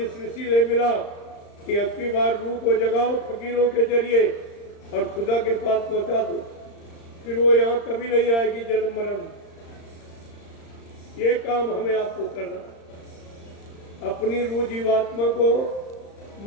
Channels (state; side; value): late; right; 35 ms